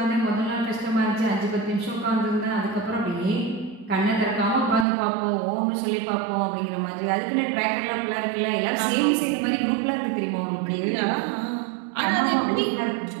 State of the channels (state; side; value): drops out; left; at 4.9 s